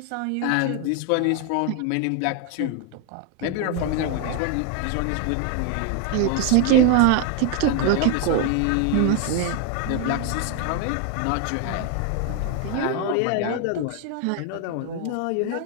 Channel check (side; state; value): both; different; correlation 0.01